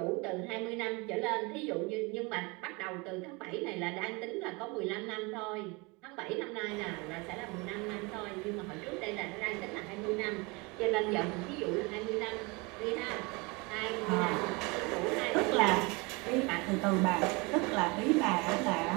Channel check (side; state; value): left; quieter; 27.2 dB